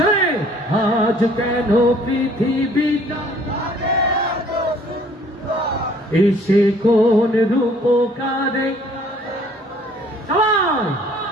আজ কেন পৃথিবীটা, এসে কোন রূপকারে। সবাই,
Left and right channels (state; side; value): normal; both; correlation 0.57